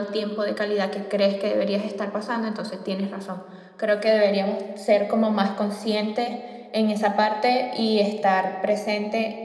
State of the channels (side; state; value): both; identical; correlation 1.00